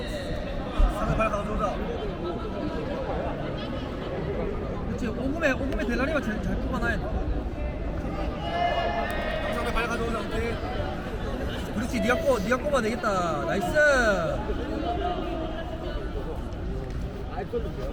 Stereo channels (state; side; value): identical; both; correlation 1.00